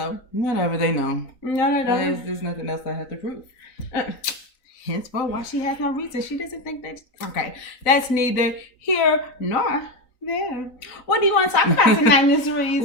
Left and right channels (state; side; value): late; right; 3.9 ms